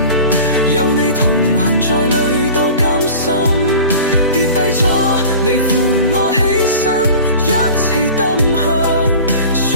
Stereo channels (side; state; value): both; inverted; correlation -0.39